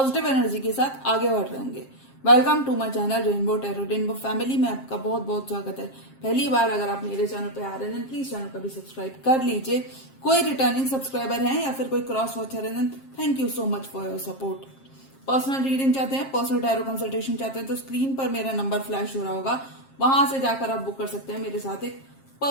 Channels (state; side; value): late; right; 7.5 ms